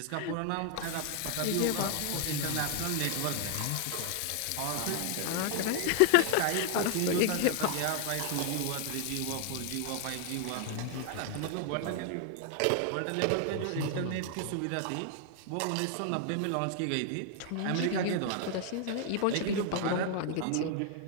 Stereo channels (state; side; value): different; both; correlation 0.00